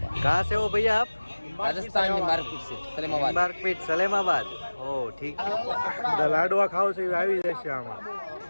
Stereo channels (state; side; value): inverted; both; correlation -1.00